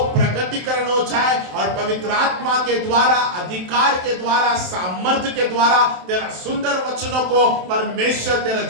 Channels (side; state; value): left; late; 27 ms